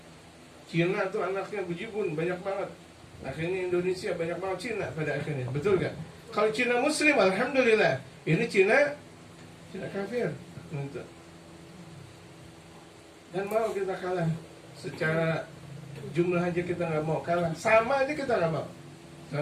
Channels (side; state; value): both; identical; correlation 1.00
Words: Cina tuh anaknya bejibun banyak banget. Akhirnya Indonesia banyak banget Cina pada akhirnya. Betul gak? Kalau Cina Muslim, alhamdulillah. Ini Cina kafir. Untuk. Dan mau kita kalah secara jumlah aja kita nggak mau kalah, sama aja kita nggak mau.